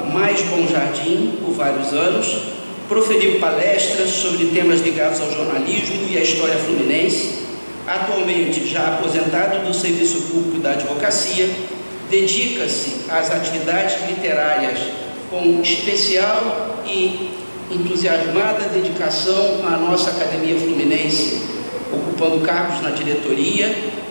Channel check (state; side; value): inverted; both; correlation -1.00